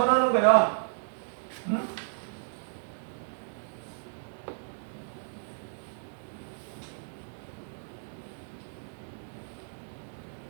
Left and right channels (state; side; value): silent; left; digital silence